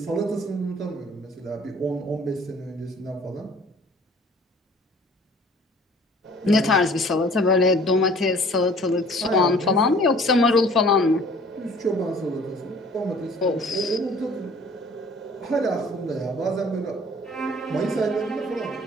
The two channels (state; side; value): normal; both; correlation 0.52